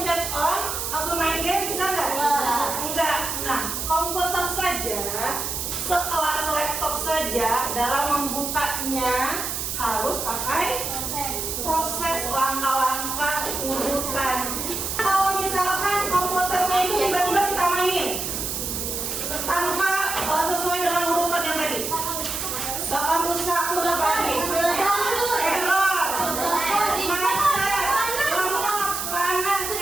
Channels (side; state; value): right; noise; hiss, 3 dB below the sound